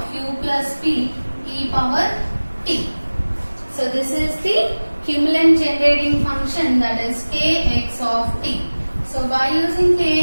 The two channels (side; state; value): both; inverted; correlation -1.00